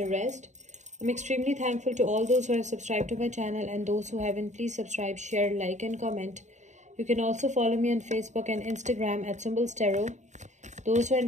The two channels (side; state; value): left; late; 0.34 ms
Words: rest. I'm extremely thankful to all those who have subscribed to my channel, and those who haven't, please subscribe, share, like and comment. You can also follow me on Facebook and Instagram at Symbols Tarot. Those who are